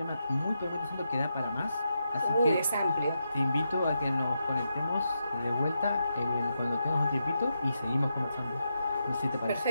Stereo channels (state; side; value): inverted; both; correlation -0.84